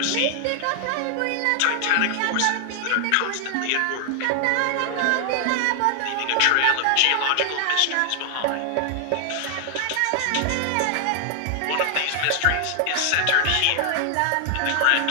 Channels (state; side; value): different; both; correlation 0.00